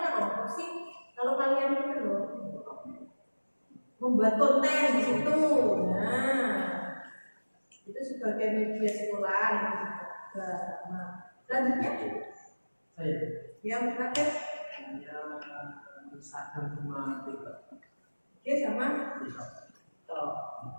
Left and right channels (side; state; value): both; inverted; correlation -1.00